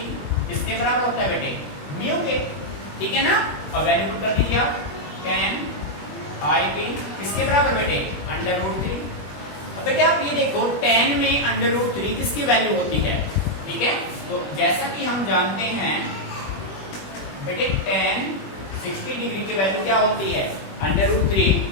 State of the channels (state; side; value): late; right; 21 ms